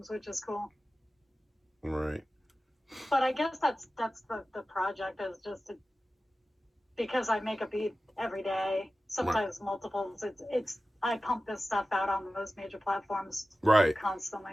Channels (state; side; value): normal; both; correlation 0.95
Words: which is cool. Right. But I guess that's the project, is just because I make a beat every day, sometimes multiples. I pump this stuff out on those major platforms Right.